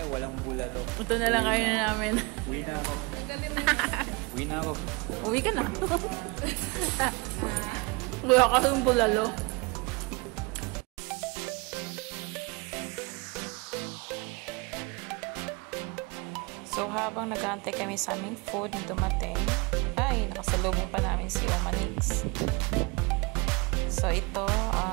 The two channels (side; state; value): left; quieter; 27.4 dB